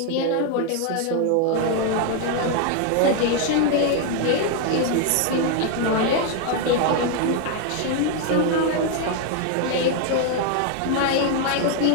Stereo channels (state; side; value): different; both; correlation 0.00